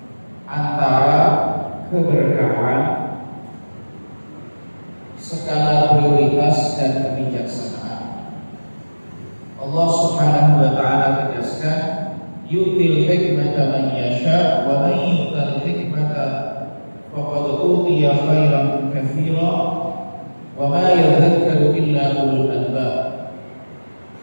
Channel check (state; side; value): inverted; both; correlation -1.00